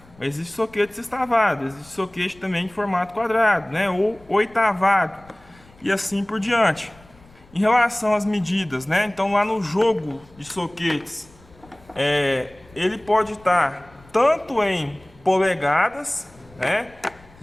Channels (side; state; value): left; noise; rumble, 26 dB below the sound